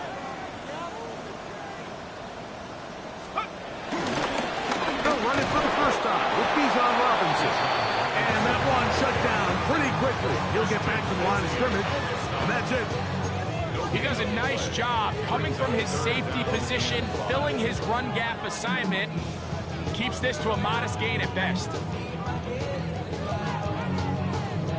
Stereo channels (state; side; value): identical; both; correlation 1.00